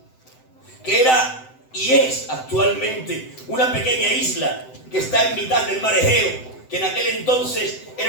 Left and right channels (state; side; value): late; right; 7.8 ms